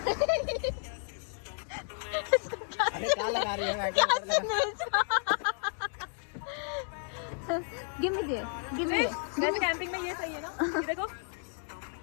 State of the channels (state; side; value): silent; right; 56 dB below the other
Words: अरे क्या लगा रही है? Give me there। वैसे कैंपिंग में ये सही है ना। ये देखो।